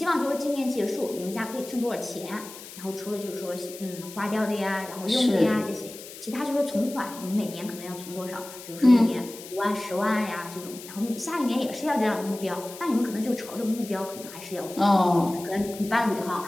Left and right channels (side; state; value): left; noise; hiss, 15 dB below the sound